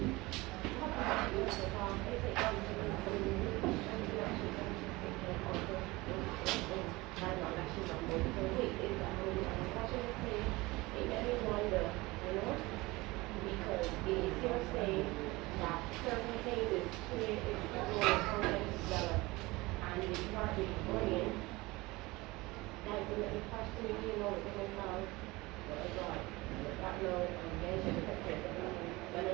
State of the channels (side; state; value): left; quieter; 21.7 dB